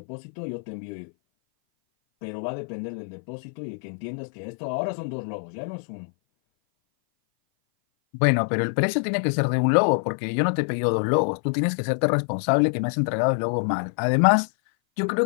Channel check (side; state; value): right; silent; 57 dB below the other